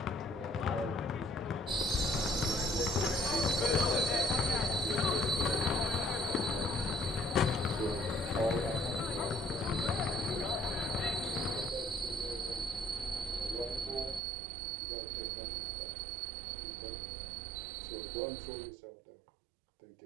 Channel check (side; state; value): left; drops out; at 14.2 s